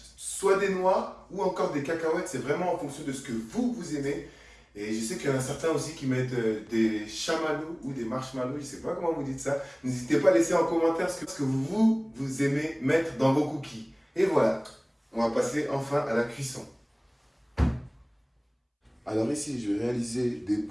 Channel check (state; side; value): identical; both; correlation 1.00